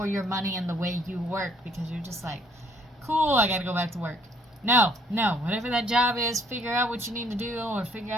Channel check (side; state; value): both; normal; correlation 0.64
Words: your money and the way you work, because you're just like, cool, I got to go back to work. No, whatever that job is, figure out what you need to do, or figure